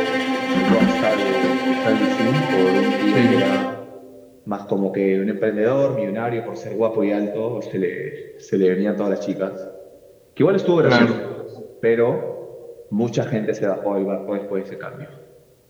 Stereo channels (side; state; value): both; identical; correlation 1.00